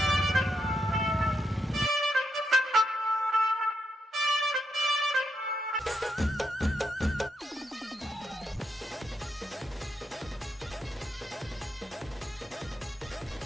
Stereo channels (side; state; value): both; normal; correlation 0.82